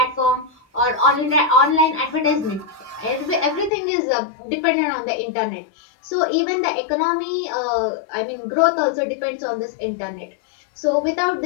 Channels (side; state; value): right; drops out; at 3.7 s